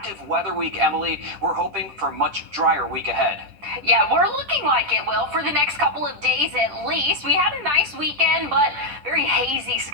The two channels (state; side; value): late; left; 10 ms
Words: weather week. Emily, we're hoping for a much drier week ahead. Yeah, we're looking like it will for the next couple of days at least. We had a nice weekend, but very hazy